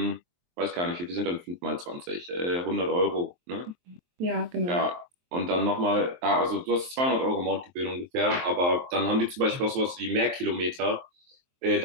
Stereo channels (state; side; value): late; left; 23 ms